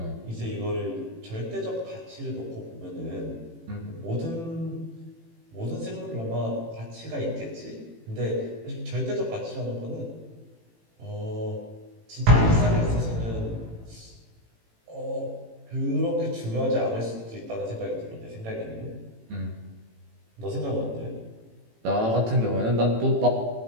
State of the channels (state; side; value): late; left; 18 ms